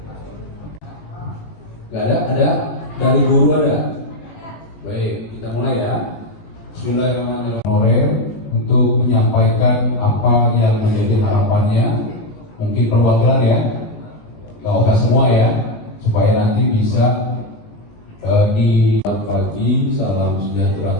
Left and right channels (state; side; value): late; right; 20 ms